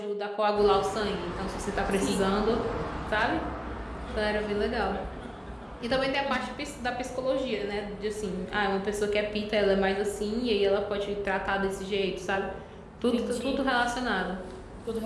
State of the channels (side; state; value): both; identical; correlation 1.00